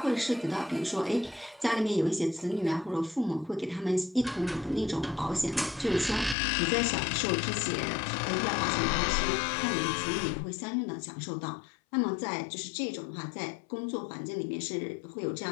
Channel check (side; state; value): right; drops out; at 6.4 s